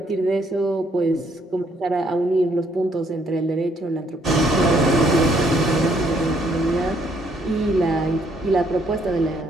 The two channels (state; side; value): normal; both; correlation 0.69